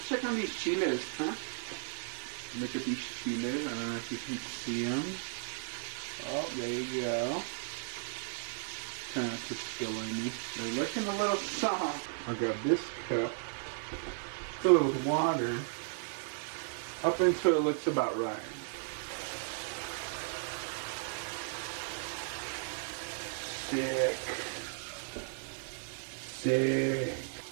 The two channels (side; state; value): left; silent; digital silence